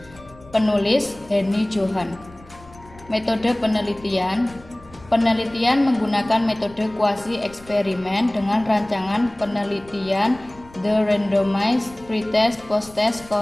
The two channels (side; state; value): left; noise; rumble, 23 dB below the sound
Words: Penulis Henny Johan. Metode penelitian. Penelitian menggunakan metode kuasi eksperimen dengan rancangan penelitian The Randomized Pretest Post-Test